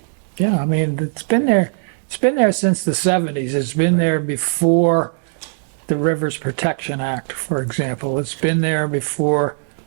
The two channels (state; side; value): silent; left; digital silence